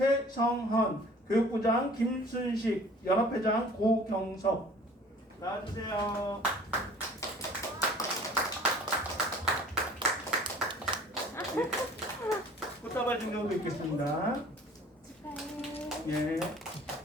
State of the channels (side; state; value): both; normal; correlation 0.49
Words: 교육부장 김순식, 연합회장 고경석. 나와주세요. 꽃다발 증정도 있겠습니다. 예.